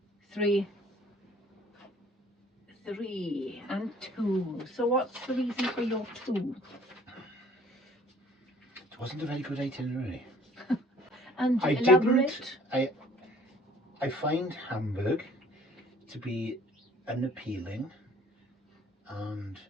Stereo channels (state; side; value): normal; both; correlation 0.54